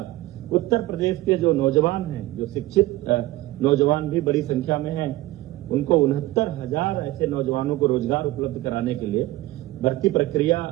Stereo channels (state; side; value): quieter; left; 17.6 dB